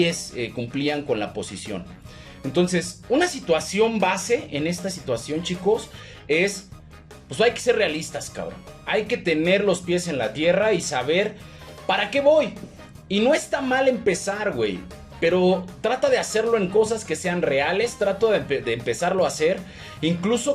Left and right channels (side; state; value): both; identical; correlation 1.00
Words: cumplían con la posición. Entonces, una situación base en esta situación, chicos, es, pues hay que ser realistas, cabrón. Hay que tener los pies en la tierra y saber para qué voy. Y no está mal empezar, güey, pero trata de hacerlo en cosas que sean reales, trato de empezarlo a hacer,